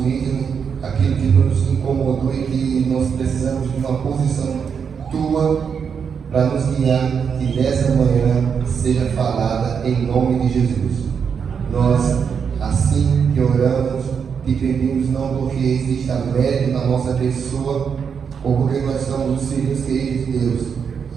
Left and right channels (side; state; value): left; quieter; 6.7 dB